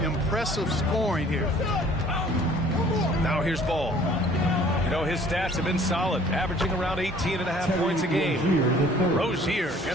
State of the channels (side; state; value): both; normal; correlation 0.54